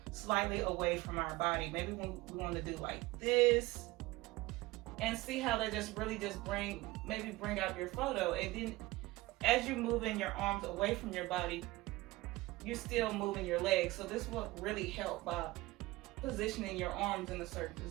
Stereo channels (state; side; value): quieter; left; 19.8 dB